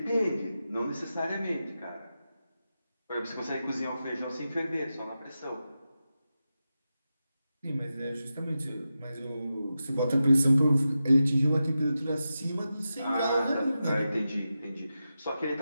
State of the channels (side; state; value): both; inverted; correlation -0.91